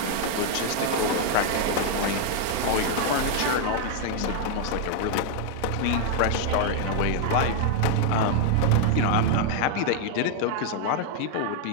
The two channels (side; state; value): both; different; correlation 0.00